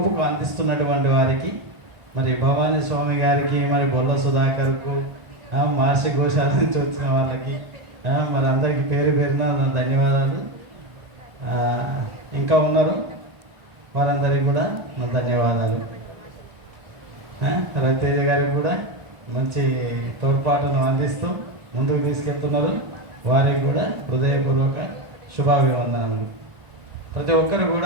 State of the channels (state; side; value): late; left; 1.4 ms